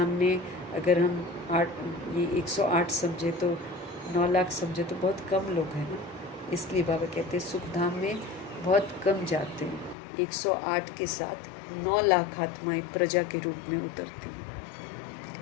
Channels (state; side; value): drops out; right; at 10.0 s